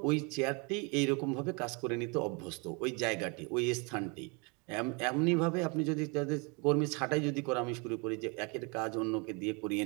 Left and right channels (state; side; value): quieter; left; 31.4 dB